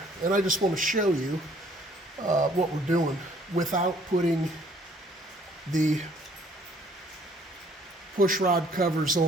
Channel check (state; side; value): normal; both; correlation 0.60